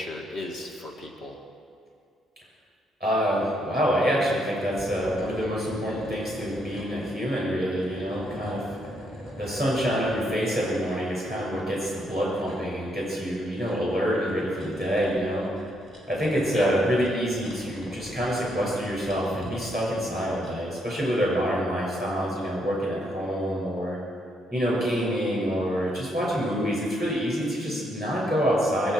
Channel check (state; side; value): normal; both; correlation 0.75